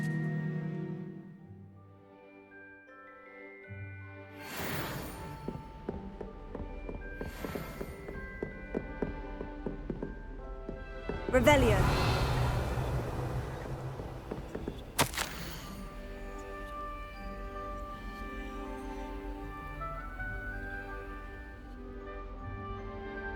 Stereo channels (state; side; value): identical; both; correlation 1.00